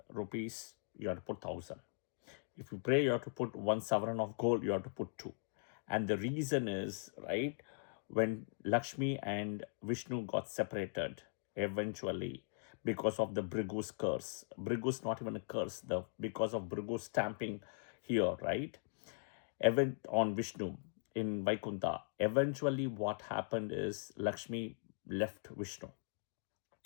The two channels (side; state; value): right; silent; digital silence